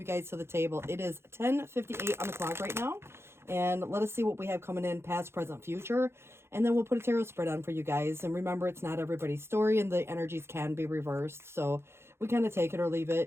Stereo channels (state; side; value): late; left; 0.12 ms